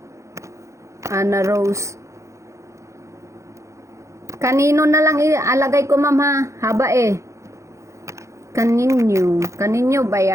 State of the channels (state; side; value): late; left; 0.15 ms